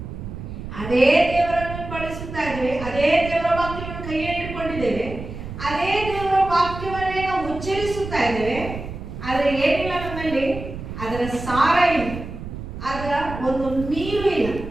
ಅದೇ ದೇವರನ್ನು ಬಳಸುತ್ತಾ ಇದ್ದೇವೆ, ಅದೇ ದೇವರ ವಾಕ್ಯವನ್ನು ಕೈಯಲ್ಲಿ ಇಟ್ಕೊಂಡಿದ್ದೇವೆ, ಅದೇ ದೇವರ ವಾಕ್ಯವನ್ನೇ ನಾವು ಉಚ್ಚರಿಸುತ್ತಾ ಇದ್ದೇವೆ. ಆದರೆ ಏನಿಲ್ಲ ನಮ್ಮಲ್ಲಿ, ಅದರ ಸಾರ ಇಲ್ಲ, ಅದರ ಒಂದು ನೀರು ಇಲ್ಲ,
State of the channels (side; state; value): right; noise; rumble, 9 dB below the sound